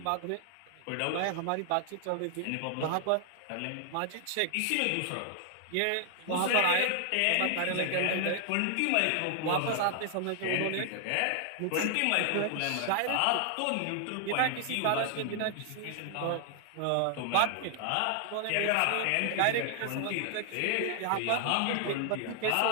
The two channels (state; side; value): different; both; correlation 0.00